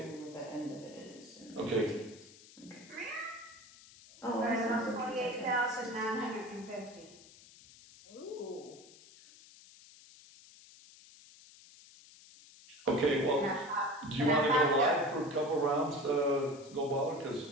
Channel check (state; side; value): noise; left; hiss, 21 dB below the sound